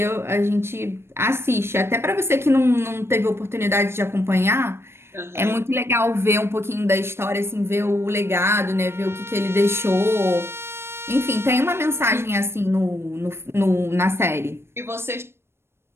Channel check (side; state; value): left; late; 0.12 ms